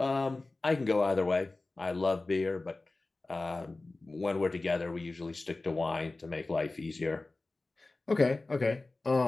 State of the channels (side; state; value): right; quieter; 3.2 dB